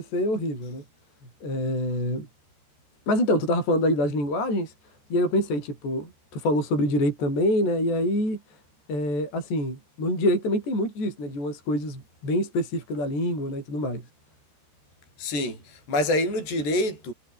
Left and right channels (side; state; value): right; late; 14 ms